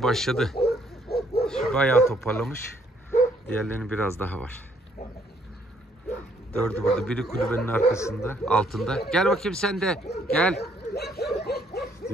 başladı. Şu bayağı toparlamış. Diğerlerinin biraz daha var. 4'ü burada. Biri kulübenin arkasında, altında. Gel bakayım sen de. Gel.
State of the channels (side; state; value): both; normal; correlation 0.67